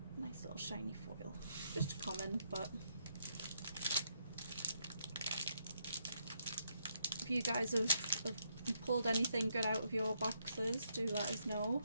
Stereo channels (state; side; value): inverted; both; correlation -0.76